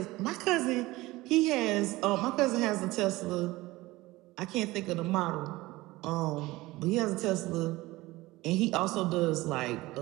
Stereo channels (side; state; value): left; quieter; 19.5 dB